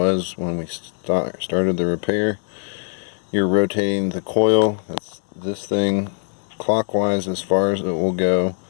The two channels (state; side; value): silent; right; 65 dB below the other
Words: when we started the repair. You're rotating the coil, that's this thing, clockwise as far as it will go,